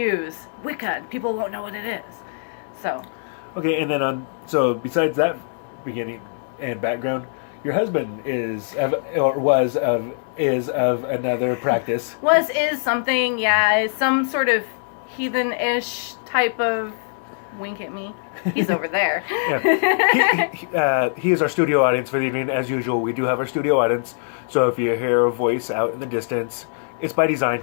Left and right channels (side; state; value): right; silent; digital silence